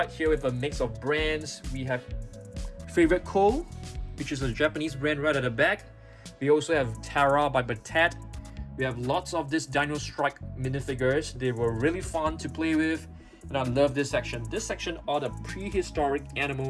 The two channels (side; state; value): both; identical; correlation 1.00